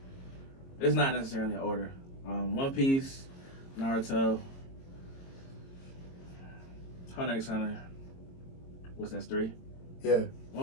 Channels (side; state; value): right; late; 22 ms